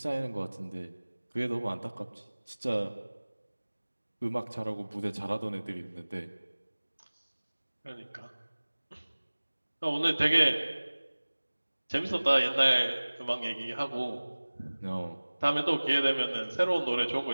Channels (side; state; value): both; inverted; correlation -1.00